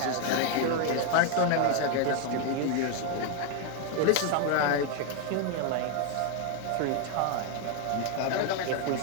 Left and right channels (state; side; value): different; both; correlation 0.01